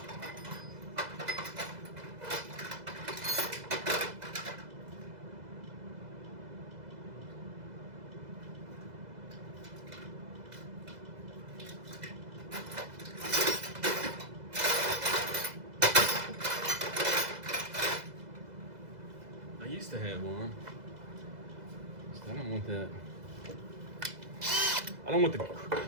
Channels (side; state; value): left; late; 2.0 ms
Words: used to have one. I don't want that. I don't want the